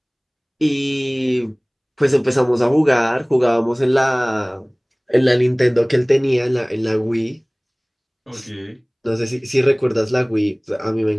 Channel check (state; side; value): identical; both; correlation 1.00